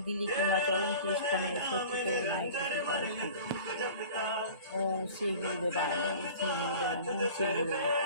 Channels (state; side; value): inverted; both; correlation -0.41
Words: দিলি কিংবা চরণ তিষ্ঠানে শত্রুকে নাই ক্ষতি করে ওম শ্রী গুরুদেবায় ওম শ্রী গুরুদেবায় ওম শ্রী গুরুদেব